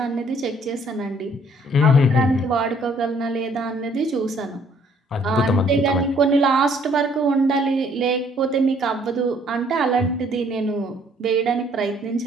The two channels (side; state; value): both; normal; correlation 0.62